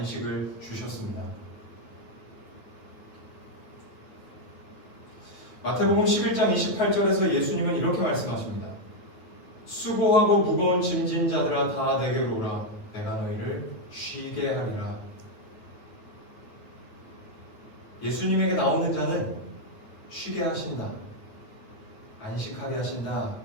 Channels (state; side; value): late; right; 9.3 ms